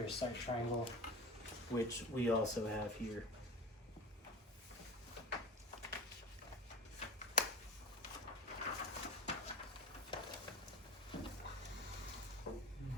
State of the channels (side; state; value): both; normal; correlation 0.31